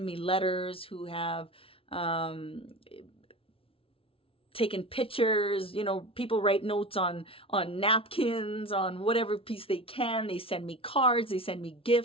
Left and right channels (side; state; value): right; late; 0.26 ms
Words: me letters, who have um, taken pictures. People write notes on napkins, on whatever piece they can. They send me cards, they send me